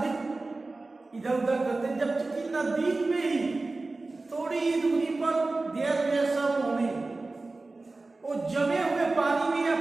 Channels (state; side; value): quieter; left; 3.4 dB